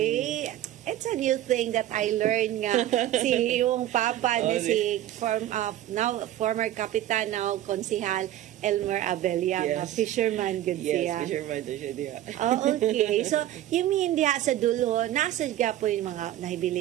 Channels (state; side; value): quieter; left; 13.0 dB